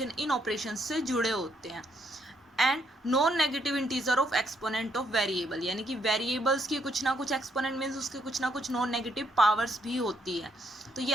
इन ऑपरेशन से जुड़े होते हैं. And non negative integer of exponent of variable, यानी कि वेरिएबल्स की कुछ ना कुछ एक्सपोनेंट मीन्स उसके कुछ ना कुछ नॉन नेगेटिव पावर्स भी होती है. तो ये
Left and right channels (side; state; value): both; normal; correlation 0.74